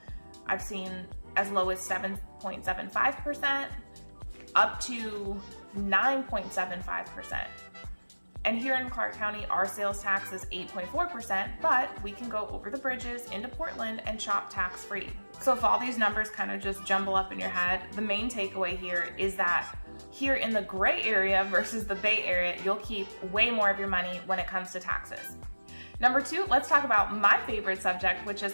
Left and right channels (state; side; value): inverted; both; correlation -1.00